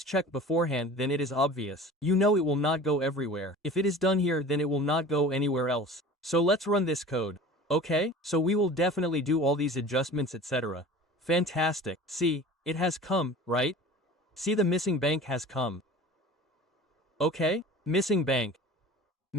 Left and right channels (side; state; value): both; normal; correlation 0.40